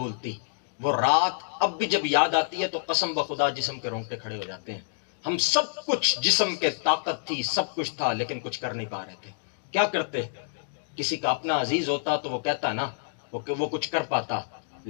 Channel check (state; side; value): silent; right; digital silence